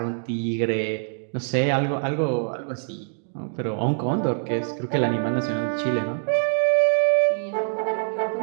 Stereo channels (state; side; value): silent; left; digital silence